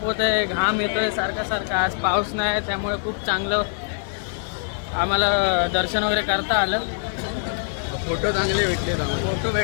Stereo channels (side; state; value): right; silent; digital silence